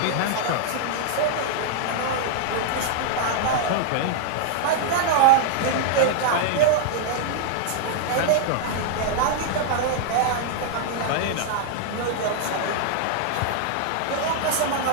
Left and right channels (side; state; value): both; different; correlation 0.00